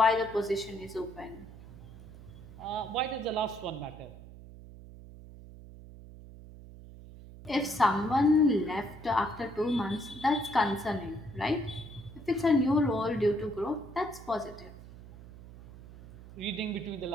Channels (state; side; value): noise; right; hum, 17 dB below the sound